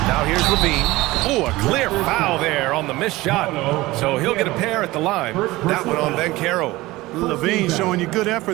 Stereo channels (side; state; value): left; quieter; 19.3 dB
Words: Now here's Levine. Oh, a clear foul there on the missed shot. So he'll get a pair at the line. That one on Ben Carroll. Levine showing you good